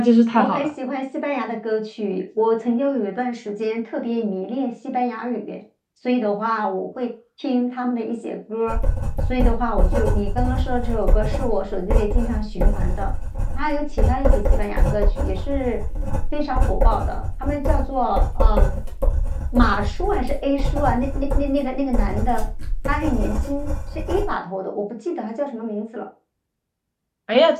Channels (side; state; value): both; identical; correlation 1.00